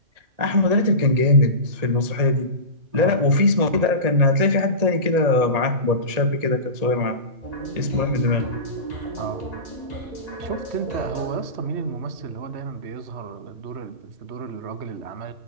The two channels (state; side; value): late; left; 1.9 ms